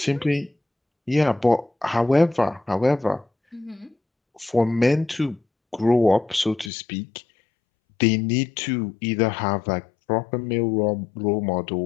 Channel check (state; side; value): drops out; right; at 6.7 s